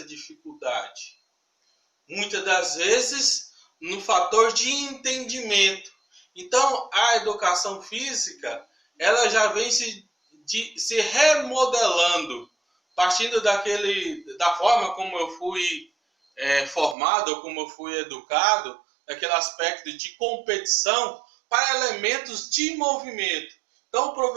dificuldade? Muitas das vezes no fator de entendimento. Então, a educação física, ela já vem se remodelando, partindo da forma como eu fui formado, ou como eu fui educado, daquele aspecto de competição, para elementos de movimento. Então, o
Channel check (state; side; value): drops out; left; at 16.9 s